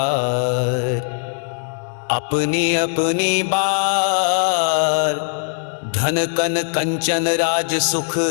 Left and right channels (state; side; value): silent; right; 60 dB below the other